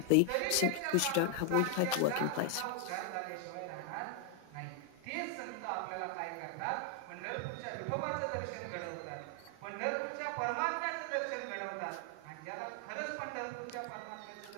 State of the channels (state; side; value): different; both; correlation 0.00